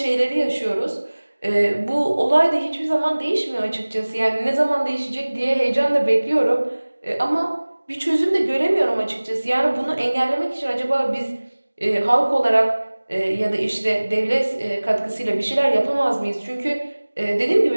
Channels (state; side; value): inverted; both; correlation -1.00